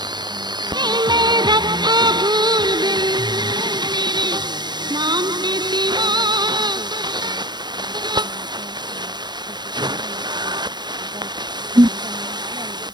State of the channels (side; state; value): left; late; 0.21 ms